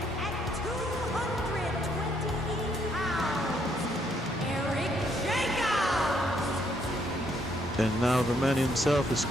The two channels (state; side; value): normal; both; correlation 0.71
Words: And now the man himself is